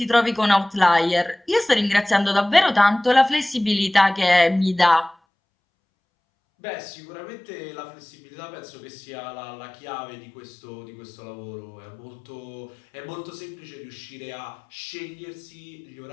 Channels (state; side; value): drops out; right; at 5.2 s